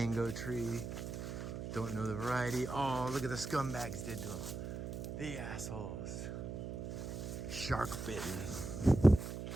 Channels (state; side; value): noise; right; hum, 6 dB below the sound